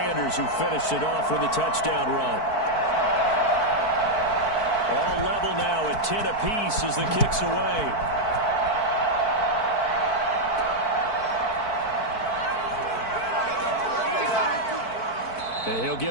who finished it off with a touchdown run. All level now at 10 apiece as the kick's away. And he'll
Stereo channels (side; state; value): right; late; 4.5 ms